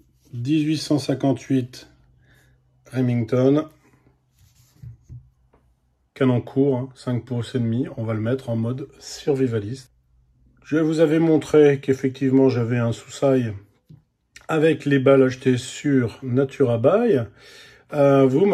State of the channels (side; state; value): both; identical; correlation 1.00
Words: 1858 Remington. Canon court, hein, 5 pouces et demi. On va le mettre en mode survivaliste. Je vous avais montré qu'effectivement, j'avais un sous-sail avec les balles achetées sur Naturabuy. Vous